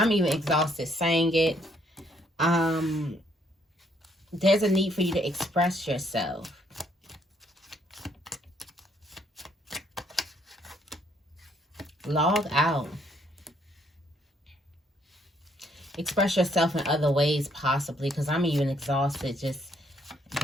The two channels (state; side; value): normal; both; correlation 0.69